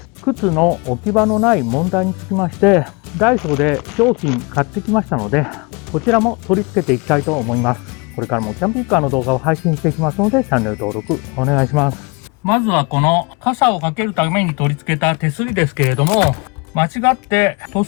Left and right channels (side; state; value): right; quieter; 28.9 dB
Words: 靴の置き場のない問題につきまして、ダイソーで商品買ってきましたので、こちらも取り付けていきたいと思います。これからもキャンピングカーの動画を配信していきますので、チャンネル登録お願いします。まずはこの傘をかけるために取り付けた手すりですけれども、間違って塗